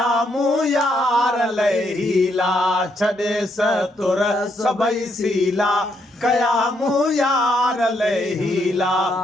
मूं यार लहीला, छॾे सतुर सभई सीला कया मूं यार लहीला,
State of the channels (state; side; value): normal; both; correlation 0.75